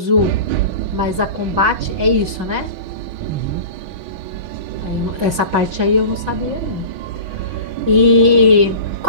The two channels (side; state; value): left; late; 6.1 ms